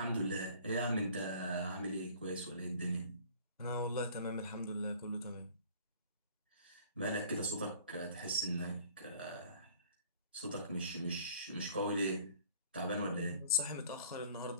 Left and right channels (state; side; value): inverted; both; correlation -0.51